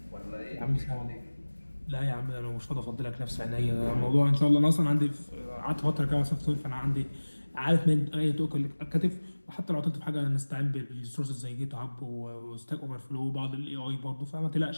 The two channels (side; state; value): both; inverted; correlation -1.00